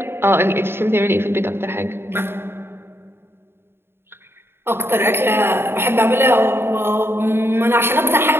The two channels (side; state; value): left; late; 0.11 ms